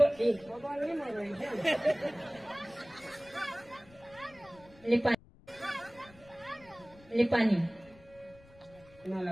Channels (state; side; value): noise; left; rumble, 25 dB below the sound